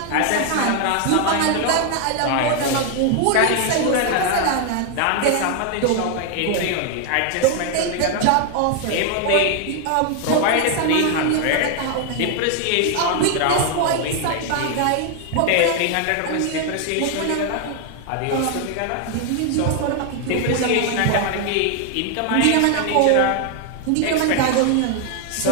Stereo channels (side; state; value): both; different; correlation 0.00